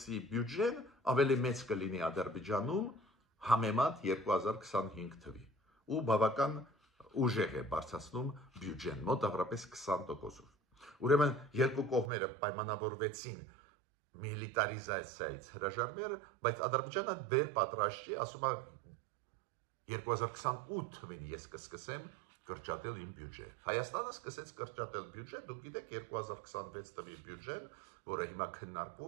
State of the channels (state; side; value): drops out; left; at 12.1 s